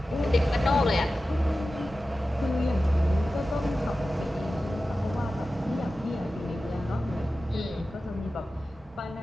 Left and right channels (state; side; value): normal; both; correlation 0.94